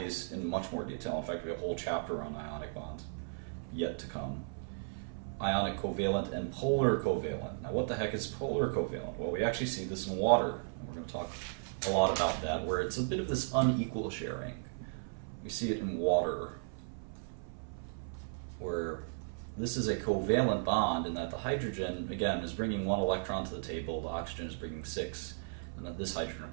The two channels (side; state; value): left; silent; 54 dB below the other